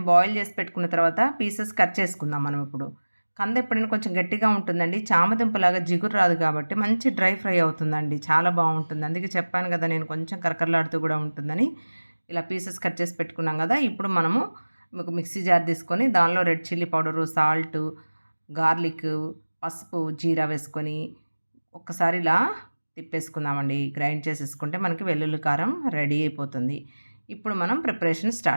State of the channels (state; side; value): inverted; both; correlation -1.00